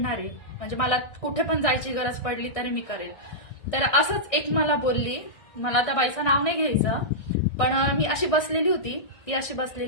आहे. म्हणजे मला कुठे पण जायची गरज पडली तरी मी करेल. तर असंच एक मला बोलली, मला त्या बाईचं नाव नाही घ्यायचं, पण मी अशी बसलेली होती, ती अशी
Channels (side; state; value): right; late; 1.6 ms